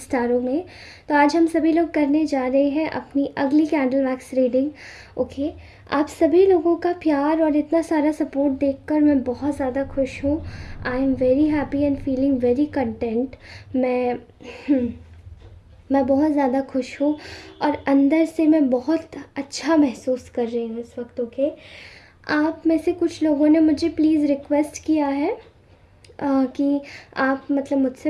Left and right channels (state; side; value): identical; both; correlation 1.00